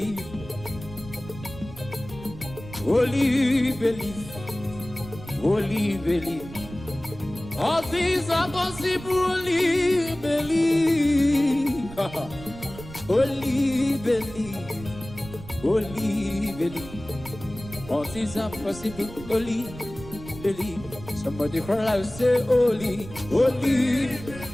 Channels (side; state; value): right; noise; rumble, 15 dB below the sound